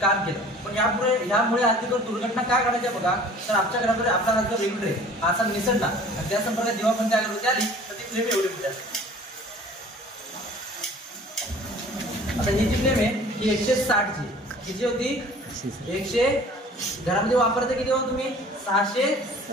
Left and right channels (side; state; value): both; normal; correlation 0.48